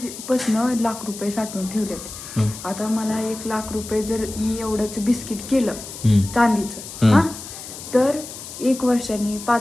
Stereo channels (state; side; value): noise; left; hiss, 12 dB below the sound